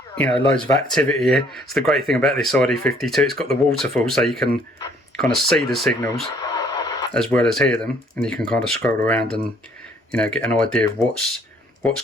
you know, loads of activity here. It's the great thing about this ID52, it's got the waterfall, so you can kind of see the signals as well as hear them, and you can kind of scroll around and, you know, get an idea of what's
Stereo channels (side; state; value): both; normal; correlation 0.61